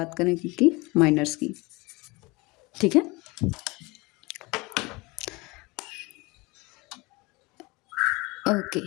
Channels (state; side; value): quieter; right; 24.6 dB